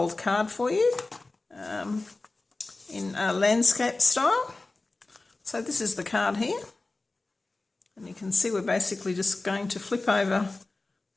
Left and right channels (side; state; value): right; quieter; 3.2 dB